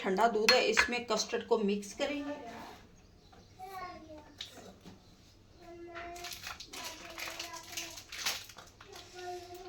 दूध है। इसमें कस्टर्ड को मिक्स करेंगे।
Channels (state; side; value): identical; both; correlation 1.00